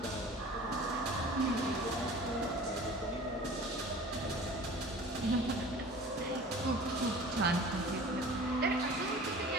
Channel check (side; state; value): both; normal; correlation 0.43